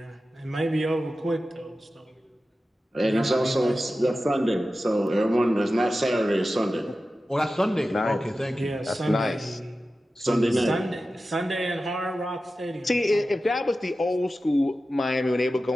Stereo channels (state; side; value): normal; both; correlation 0.94